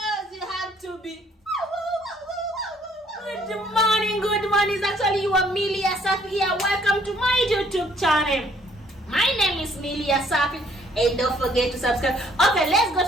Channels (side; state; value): both; normal; correlation 0.63